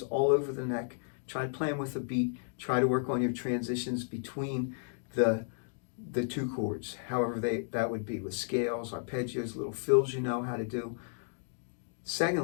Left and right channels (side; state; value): right; silent; digital silence